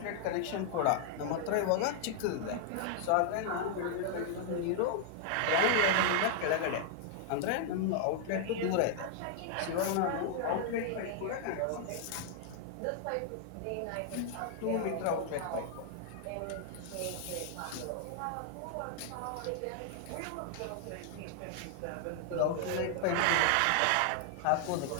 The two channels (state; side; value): different; both; correlation 0.00